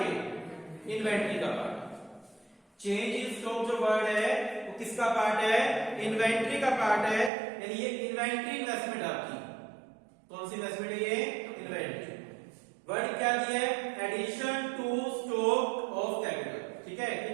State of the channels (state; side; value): drops out; left; at 7.3 s